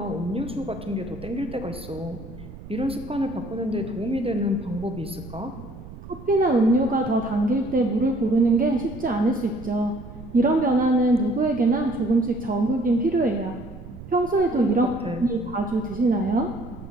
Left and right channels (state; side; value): noise; right; rumble, 15 dB below the sound